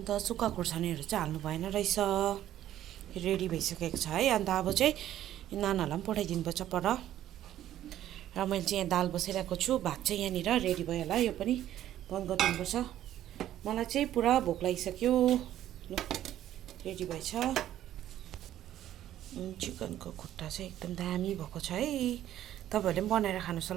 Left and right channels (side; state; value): left; quieter; 12.3 dB